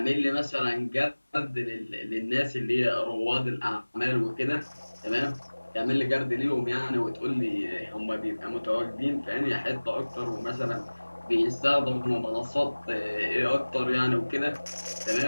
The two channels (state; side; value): inverted; both; correlation -1.00